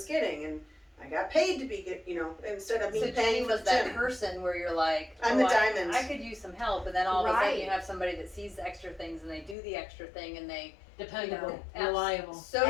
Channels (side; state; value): right; drops out; at 9.6 s